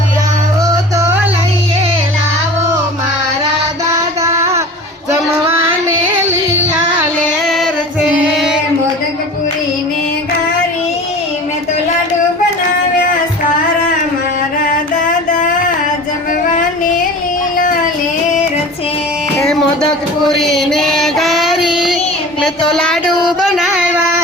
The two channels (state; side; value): normal; both; correlation 0.38